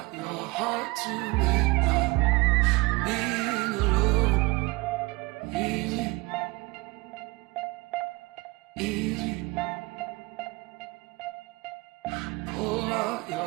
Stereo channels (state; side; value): quieter; left; 24.2 dB